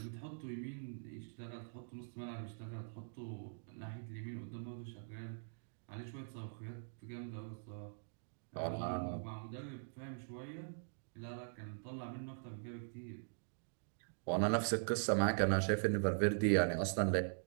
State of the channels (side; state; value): left; silent; digital silence